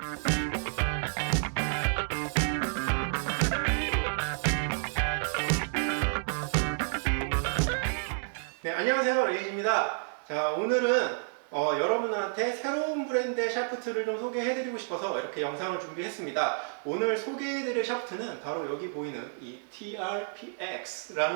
네, 안녕하세요, 레이지입니다. 자, 오늘은 여러분한테 새로운 브랜드의 샤프트를 좀 소개해드리고 싶어서 이렇게 영상을 준비했습니다. 오늘 소개해드릴 샤프트는 바로 여기 보이는 이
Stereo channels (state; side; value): silent; left; digital silence